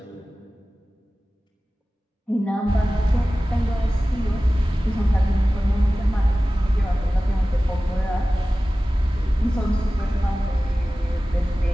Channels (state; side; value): normal; both; correlation 0.96